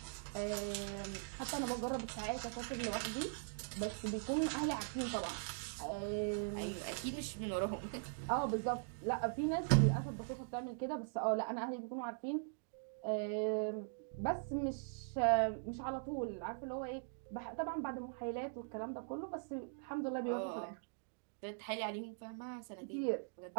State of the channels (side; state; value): left; silent; digital silence